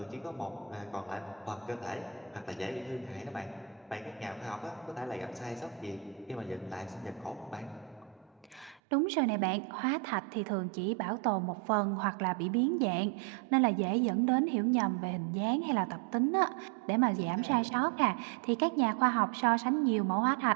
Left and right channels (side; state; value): left; drops out; at 8.8 s